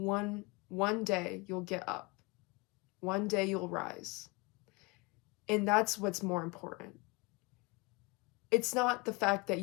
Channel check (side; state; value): right; quieter; 27.1 dB